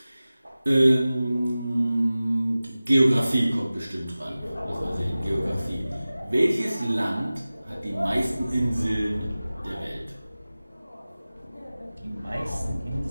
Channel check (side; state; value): both; inverted; correlation -0.97